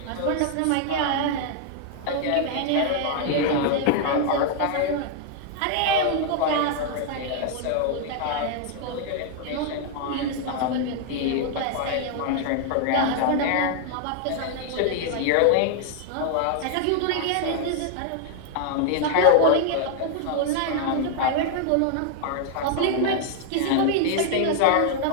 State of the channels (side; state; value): both; different; correlation 0.00